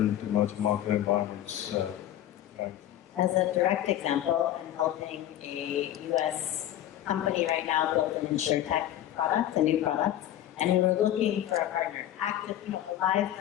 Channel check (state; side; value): quieter; right; 12.3 dB